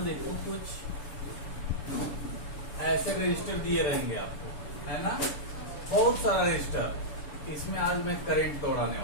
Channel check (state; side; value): late; right; 6.9 ms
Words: देखो कुछ ऐसे रजिस्टर दिए रहेंगे आपको, है ना, बहुत सारा रजिस्टर। इसमें आज मैं करंट दौड़ाने